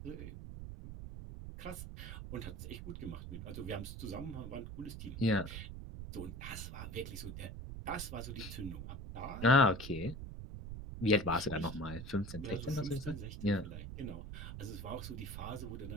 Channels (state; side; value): noise; right; rumble, 8 dB below the sound